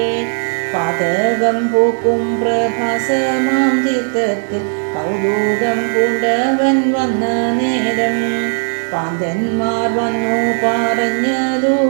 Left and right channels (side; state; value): left; silent; digital silence